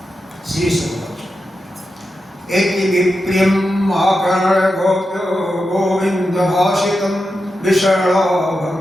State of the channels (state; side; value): normal; both; correlation 0.89